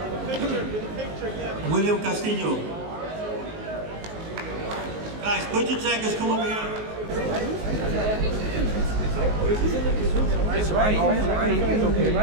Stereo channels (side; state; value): left; late; 19 ms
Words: William Castillo. Guys, put your jackets, come over here. It's right. It's okay,